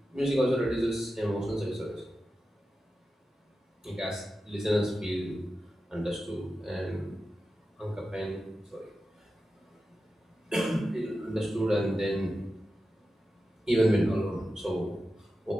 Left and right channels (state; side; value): normal; both; correlation 0.92